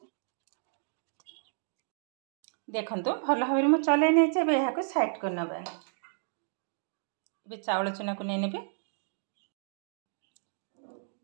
देखंतु भल भाबरे मु चले नै छै। एबे हाको साइड कर नबा। एबे चावल चुना को नै नेबी।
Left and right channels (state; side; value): silent; left; digital silence